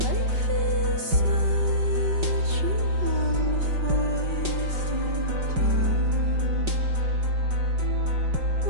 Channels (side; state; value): left; late; 5.3 ms